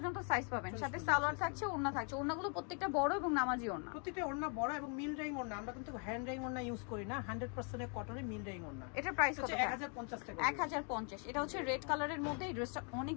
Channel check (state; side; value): quieter; right; 39.6 dB